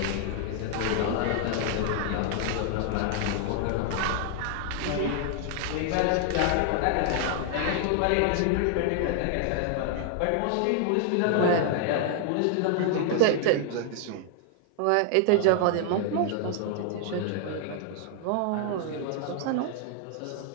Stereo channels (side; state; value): both; different; correlation 0.00